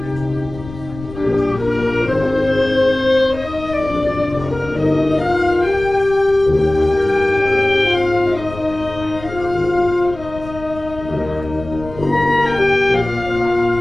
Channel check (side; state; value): left; noise; rumble, 15 dB below the sound